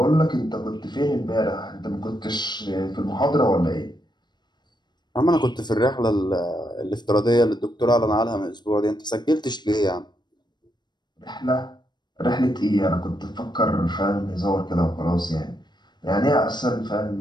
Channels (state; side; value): late; right; 0.21 ms